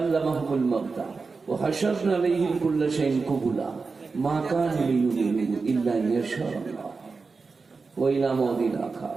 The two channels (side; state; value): left; quieter; 4.4 dB